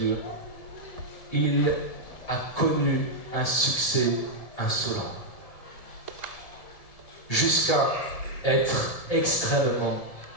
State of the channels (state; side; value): late; right; 1.7 ms